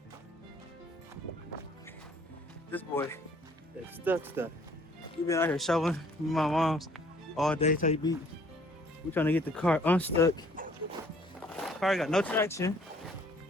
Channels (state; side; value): normal; both; correlation 0.59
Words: This boy is stuck. We've been out here shoveling with my mom's all day. Type beat. We're trying to get the car unstuck. Car got no traction.